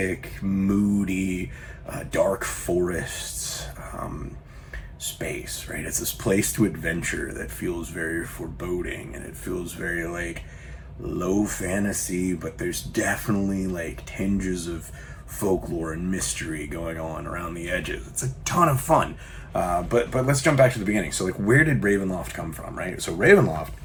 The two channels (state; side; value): identical; both; correlation 1.00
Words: moody, dark forests space, right? It's this place to adventure that feels very foreboding, and it feels very low fantasy, but there's definitely tinges of folklore and mystery going on around the edges. It's a ton of fun. But let's jump back to the beginning. So where did Ravenloft come from, right? So Ravenloft,